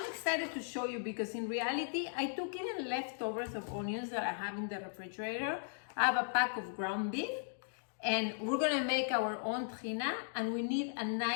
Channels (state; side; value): silent; right; digital silence